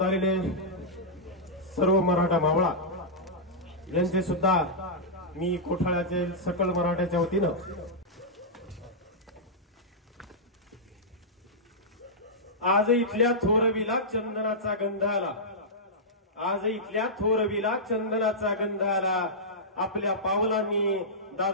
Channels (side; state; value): both; normal; correlation -0.11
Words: आलेले सर्व मराठा मावळा यांचे सुद्धा मी कोठाळ्याचे सकल मराठ्याच्या वतीनं आज इथल्या थोरवीला चंदनाचा गंध आला, आज इथल्या थोरवीला चंदनाचा गंध आला। आपल्या पावलांनी